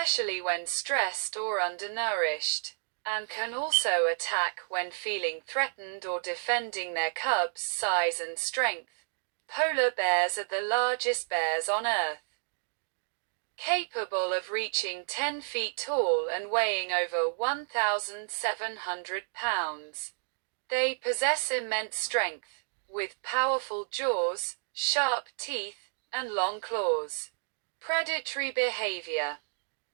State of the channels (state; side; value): silent; left; digital silence